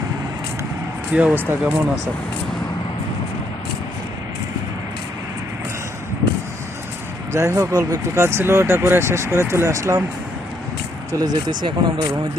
কি অবস্থা, কেমন আছেন? যাই হোক, অল্প একটু কাজ ছিল, ওটা করে শেষ করে চলে আসলাম। চলে যেতেছি এখন আমরা রুমের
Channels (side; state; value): both; normal; correlation 0.72